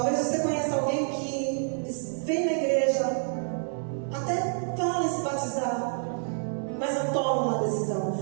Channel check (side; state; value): left; silent; 58 dB below the other